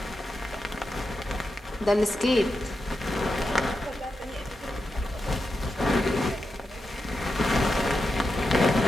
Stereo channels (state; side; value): normal; both; correlation 0.88